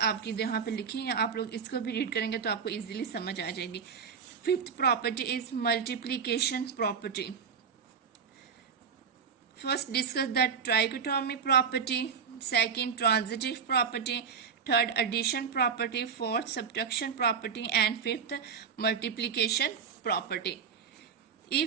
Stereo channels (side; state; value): left; quieter; 6.6 dB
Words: यहाँ पे लिखी हैं, आप लोग इसको भी रीड करेंगे तो आपको इजीली समझ आ जाएगी। Fifth property is multiplication property. First discuss the trichotomy property, second transitive property, third edition property, fourth subtraction property and fifth multiplication property.